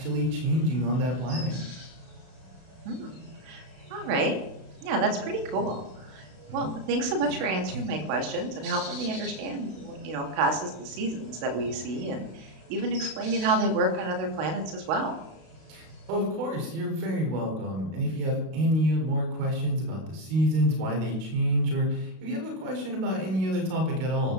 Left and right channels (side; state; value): left; late; 32 ms